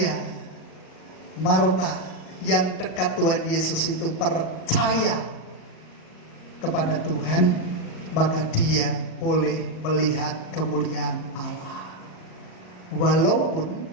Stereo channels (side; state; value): right; late; 38 ms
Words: Marta yang dekat Tuhan Yesus itu percaya kepada Tuhan, maka dia boleh melihat kemuliaan Allah. Walaupun